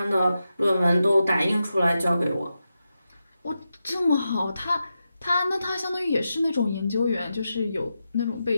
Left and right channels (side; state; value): both; inverted; correlation -0.89